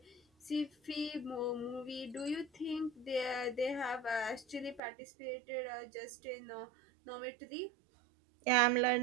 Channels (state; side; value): drops out; left; at 4.8 s